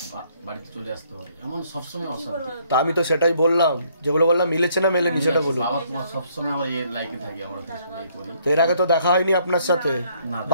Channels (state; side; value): inverted; both; correlation -0.66